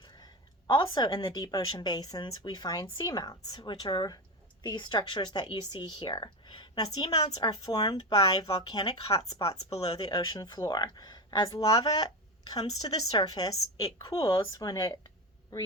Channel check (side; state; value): both; normal; correlation 0.19